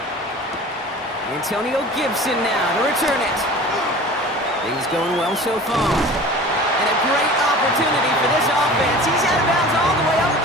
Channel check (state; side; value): normal; both; correlation 0.40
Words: Antonio Gibson now to return it. Things going well so far. And a great opportunity for this offense. He's out of bounds all the way up at